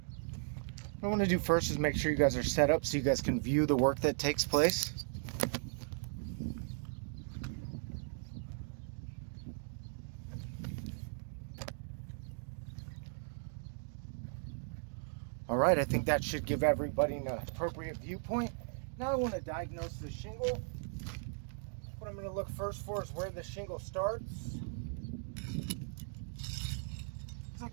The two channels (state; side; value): silent; left; digital silence